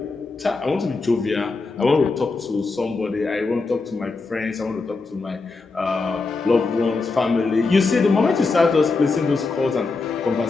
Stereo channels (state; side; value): quieter; right; 3.9 dB